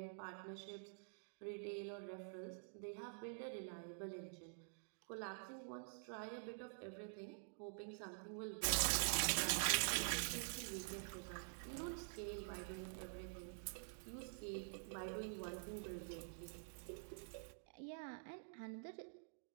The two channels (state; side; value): silent; left; digital silence